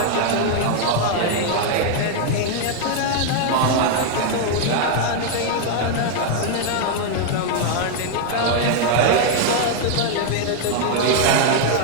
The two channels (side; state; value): both; different; correlation 0.00